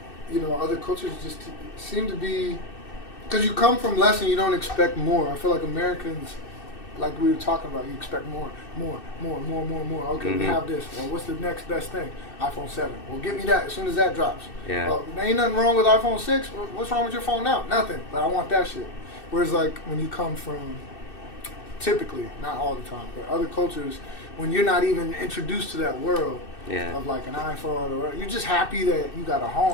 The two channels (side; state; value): right; late; 2.6 ms